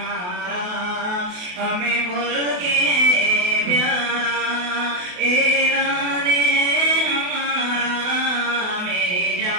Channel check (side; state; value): left; late; 28 ms